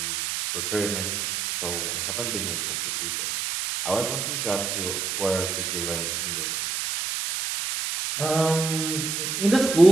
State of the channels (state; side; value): noise; right; hiss, 2 dB below the sound